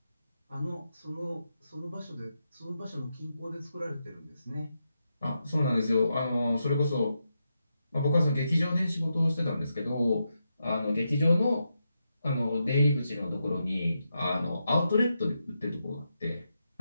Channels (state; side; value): inverted; both; correlation -0.85